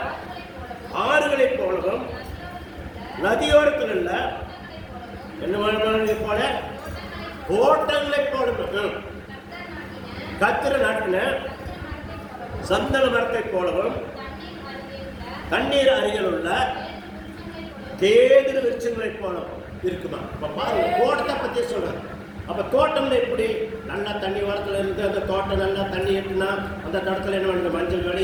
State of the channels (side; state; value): both; identical; correlation 1.00